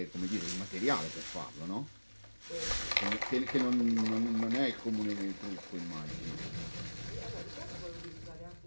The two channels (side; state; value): both; inverted; correlation -1.00